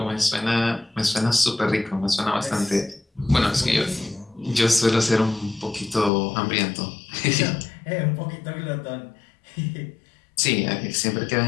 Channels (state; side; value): drops out; right; at 6.1 s